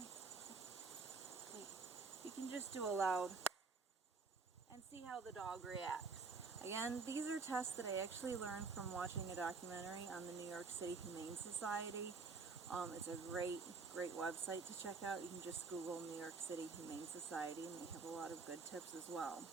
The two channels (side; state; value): left; quieter; 4.5 dB